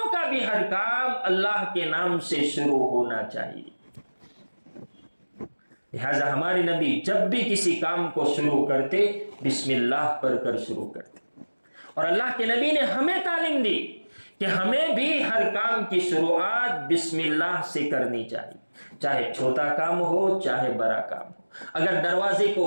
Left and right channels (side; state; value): both; inverted; correlation -1.00